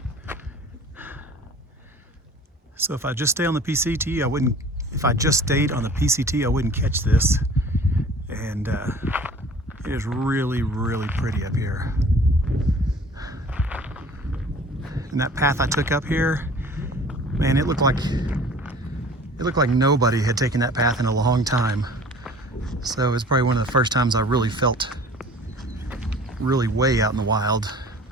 So if I just stay on the PCT, I wouldn't. If I just stayed on the PCT, I wouldn't catch this. And it is really, really pretty up here. And that path I took up here, man, it looked like nobody had taken that path in a long time. So it's probably one of the first times I really felt really way out in the wild.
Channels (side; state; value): both; normal; correlation 0.47